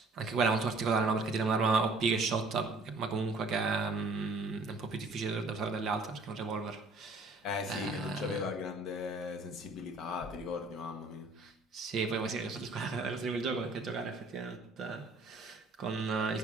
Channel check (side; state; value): left; quieter; 3.1 dB